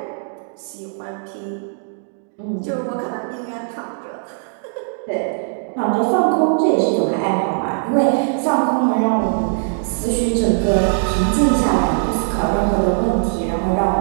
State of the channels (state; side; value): silent; left; digital silence